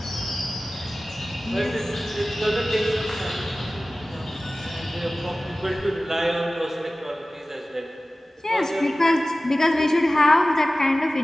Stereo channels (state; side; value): normal; both; correlation 0.97